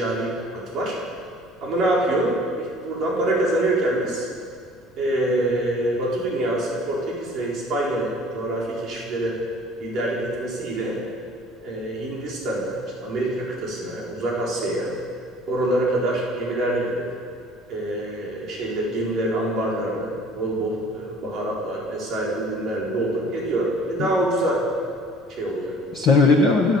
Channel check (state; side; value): normal; both; correlation 0.51